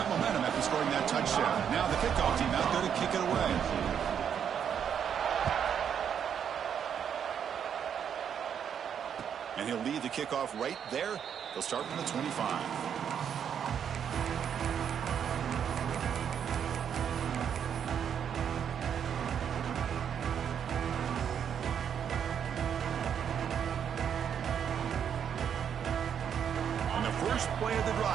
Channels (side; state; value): left; quieter; 8.2 dB